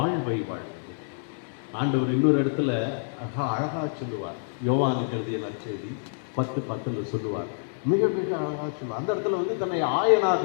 வாழ்வது. ஆண்டவர் இன்னொரு இடத்துல அழகா சொல்லுவார், யோவானுக்கு எழுதிய நற்செய்தி 10:10 சொல்லுவார். மிக மிக அழகாக சொல்லுவார். அந்த இடத்துல வந்து தன்னை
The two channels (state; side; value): silent; right; 60 dB below the other